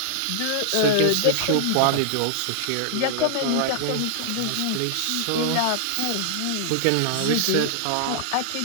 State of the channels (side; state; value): both; different; correlation -0.01